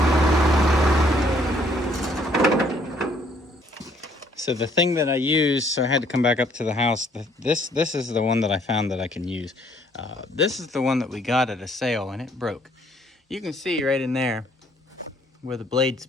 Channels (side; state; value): both; normal; correlation 0.64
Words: So the thing that I use, so I had to come back up to the house. This is the one that I found that I can use. This is the one that we got at a sale, and it broke. You can see right in there where the blade